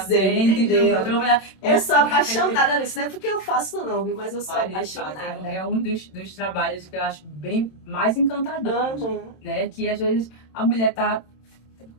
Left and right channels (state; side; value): late; right; 27 ms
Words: entendeu? Eu sou apaixonada nisso. Não é porque eu faço não, viu? Mas eu sou apaixonada. É um dos trabalhos que eu acho bem mais encantador, né? Que às vezes a mulher tá